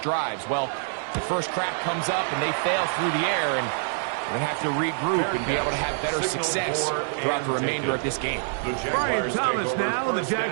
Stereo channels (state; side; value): silent; left; digital silence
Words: Well, the first crack comes up and they fail through the air, and we're going to have to regroup and be able to have better success throughout the remainder of this game. Brian Thomas now, the